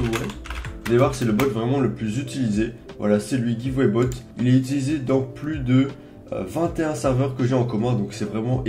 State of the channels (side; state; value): both; identical; correlation 1.00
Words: Vous allez voir c'est le bot vraiment le plus utilisé. Voilà, c'est lui, Giveaway Bot. Il est utilisé dans plus de 21 serveurs que j'ai en commun, donc c'est vraiment